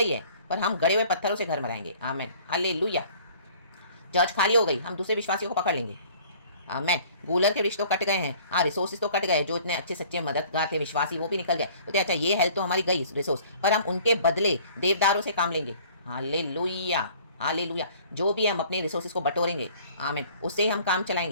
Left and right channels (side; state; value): both; inverted; correlation -0.52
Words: है, पर हम गड़े हुए पत्थरों से घर बनाएंगे। आमेन। हालेलुया। चर्च खाली हो गई, हम दूसरे विश्वासियों को पकड़ लेंगे। आमेन। गूलर के रिश्ते तो कट गए हैं, रिसोर्सेज तो कट गए, जो इतने अच्छे सच्चे मददगार थे विश्वासी वो भी निकल गए। तो अच्छा ये हेल्थ तो हमारी गई रिसोर्स, पर हम उनके बदले देवदारों से काम लेंगे। हालेलुया। हालेलुया। जो भी हम अपने रिसोर्सेज को बटोरेंगे, आमीन, उससे हम काम